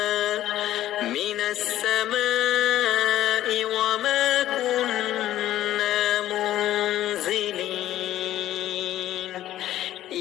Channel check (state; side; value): quieter; right; 13.4 dB